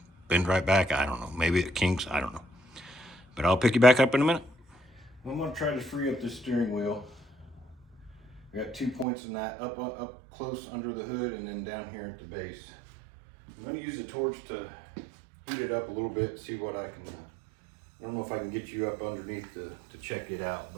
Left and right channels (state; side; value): drops out; left; at 9.1 s